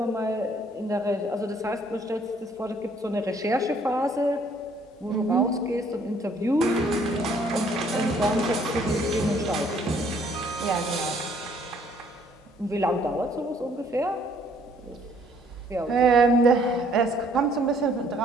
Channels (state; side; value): normal; both; correlation 0.62